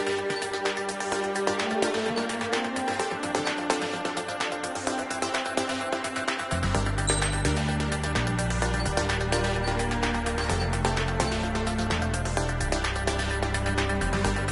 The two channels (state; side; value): identical; both; correlation 1.00